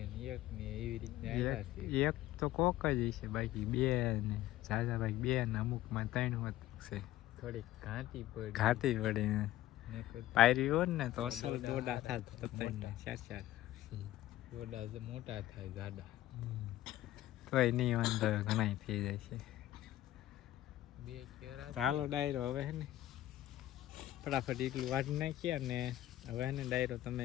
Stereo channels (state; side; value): quieter; right; 14.5 dB